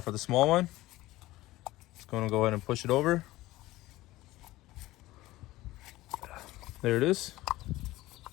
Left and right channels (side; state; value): right; quieter; 17.6 dB